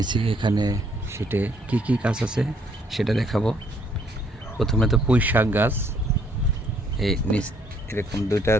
এখানে শীটে কি কি গাছ আছে সেটা দেখাবো। প্রথমে তো পুঁই শাক গাছ, এই নিচ এরকম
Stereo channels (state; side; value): normal; both; correlation 0.67